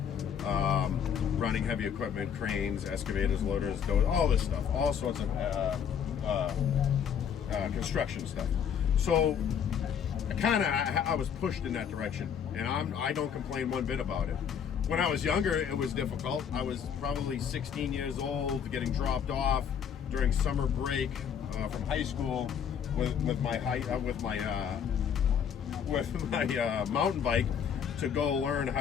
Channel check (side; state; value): right; quieter; 7.8 dB